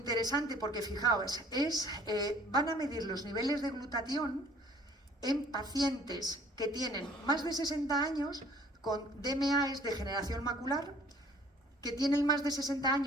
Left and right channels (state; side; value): normal; both; correlation 0.55